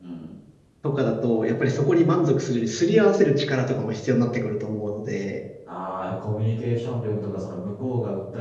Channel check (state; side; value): identical; both; correlation 1.00